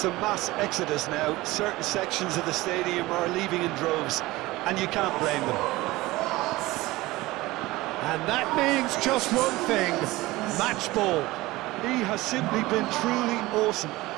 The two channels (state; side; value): quieter; left; 19.4 dB